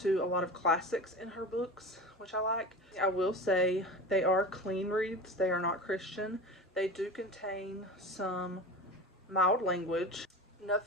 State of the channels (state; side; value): normal; both; correlation 0.31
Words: to a lot of classics in her books, which I like. I will say they are clean reads. They are not Christian. They do contain some mild language,